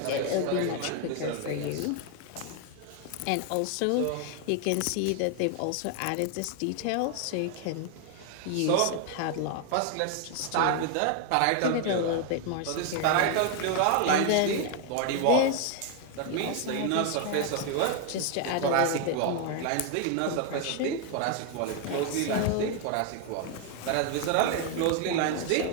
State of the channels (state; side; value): different; both; correlation 0.00